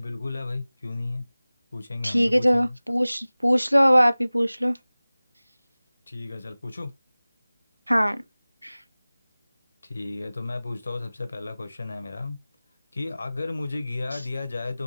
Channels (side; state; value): both; inverted; correlation -0.99